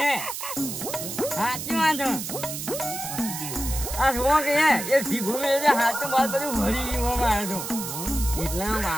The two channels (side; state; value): right; noise; hiss, 6 dB below the sound